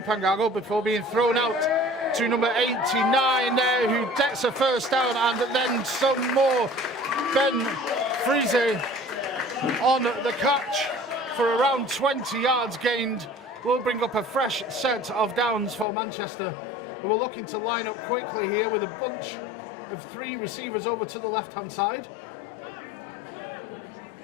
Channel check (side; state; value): right; drops out; at 15.9 s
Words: Pangago before being thrown out to number 89 there, who gets a first down, and then some more. Ben Friese on the catch for around 20 yards gained. Will bring up a fresh set of downs for Manchester, who are looking to line up quickly here with a bunch of 3 receivers over to the left-hand side.